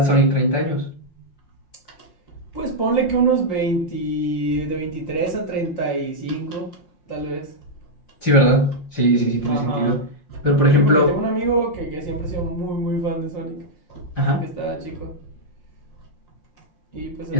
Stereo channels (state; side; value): late; right; 5.7 ms